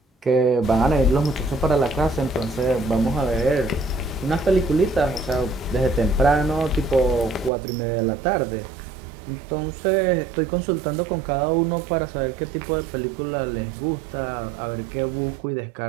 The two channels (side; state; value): left; drops out; at 7.5 s